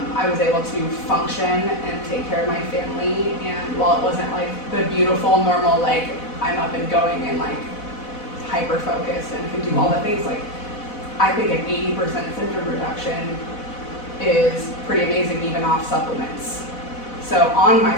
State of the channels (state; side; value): late; right; 4.1 ms